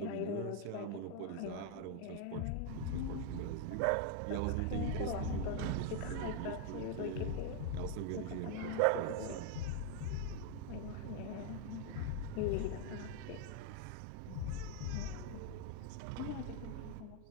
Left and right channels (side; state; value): both; different; correlation 0.00